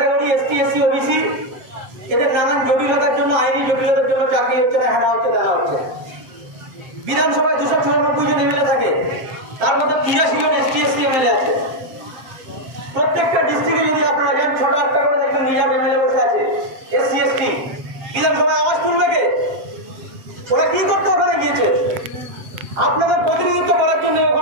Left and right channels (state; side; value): late; left; 7.7 ms